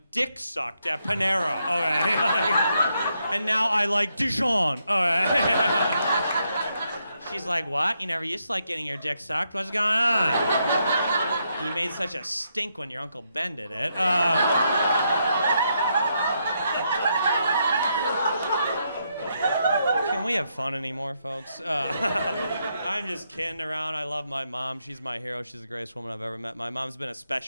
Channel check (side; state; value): both; inverted; correlation -0.79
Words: dick sucked at Panera, okay? And now I like Dijon, okay? She's like, "What? You never used to like getting your dick sucked? What's going on? You made such a stink when your Uncle Ben did it." Can we have fun anymore, folks? I'm just kidding around. I love my mom. She's my hero. She's the greatest woman I've ever met. My mom's been a